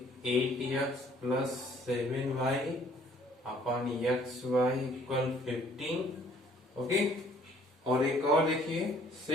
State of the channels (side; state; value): both; normal; correlation 0.59